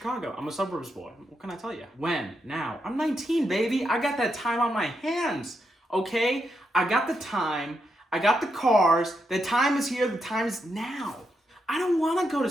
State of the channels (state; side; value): normal; both; correlation 0.82